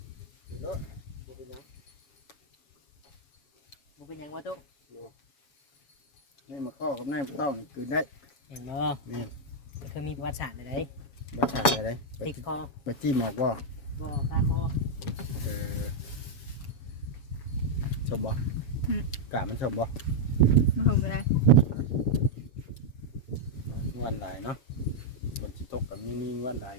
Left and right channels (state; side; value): late; right; 7.1 ms